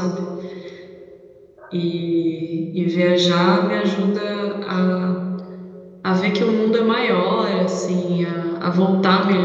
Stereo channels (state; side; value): identical; both; correlation 1.00